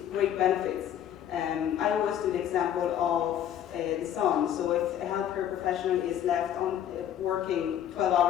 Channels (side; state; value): right; quieter; 10.3 dB